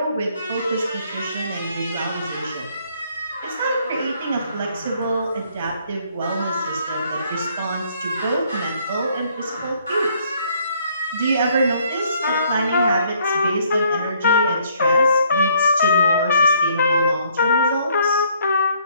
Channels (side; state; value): both; inverted; correlation -0.65